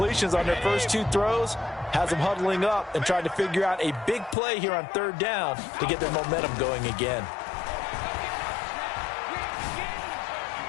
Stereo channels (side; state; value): right; drops out; at 4.4 s